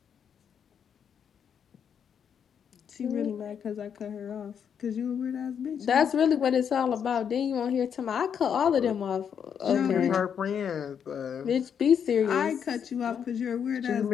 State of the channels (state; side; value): quieter; right; 7.8 dB